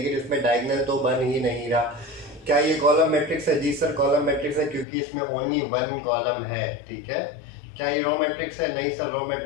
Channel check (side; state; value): right; drops out; at 4.9 s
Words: इसमें डायगोनल तो बन ही नहीं रहा। क्या ये कॉलम मैट्रिक्स है? जी सर, कॉलम मैट्रिक्स है, क्योंकि इसमें ओनली 1 कॉलम है। ठीक है, क्या ये रो मैट्रिक्स है? नहीं सर, रो